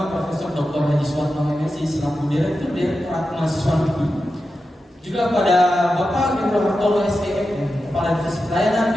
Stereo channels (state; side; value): normal; both; correlation 0.91